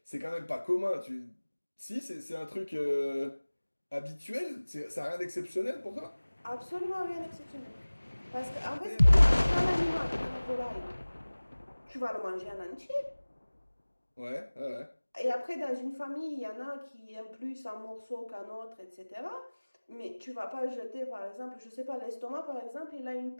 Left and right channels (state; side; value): inverted; both; correlation -1.00